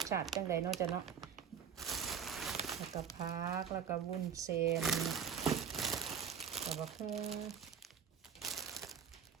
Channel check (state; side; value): quieter; left; 7.5 dB